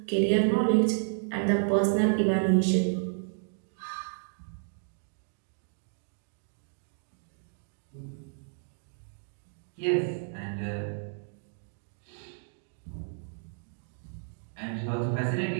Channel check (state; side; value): silent; left; digital silence